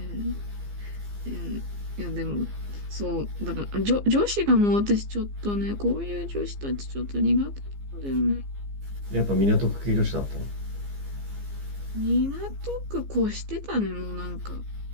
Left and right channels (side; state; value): left; late; 15 ms